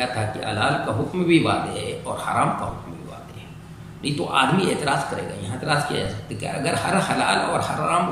تھا کہ حلال کا حکم بھی واضح ہے اور حرام کا حکم بھی واضح ہے. نہیں تو آدمی اعتراض کرے گا. یہاں اعتراض کیا جا سکتا ہے کہ اگر ہر حلال اور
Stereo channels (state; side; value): identical; both; correlation 1.00